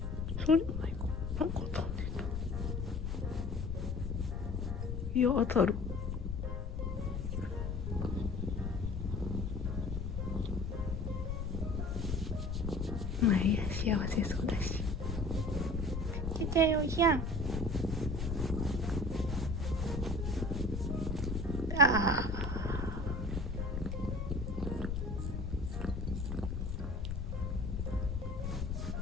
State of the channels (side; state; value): left; noise; rumble, 3 dB below the sound